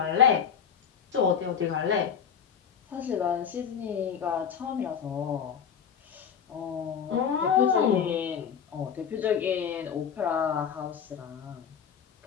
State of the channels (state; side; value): quieter; right; 7.5 dB